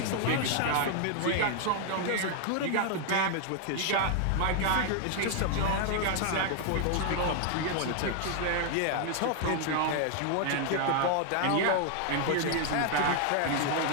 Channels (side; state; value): both; different; correlation 0.00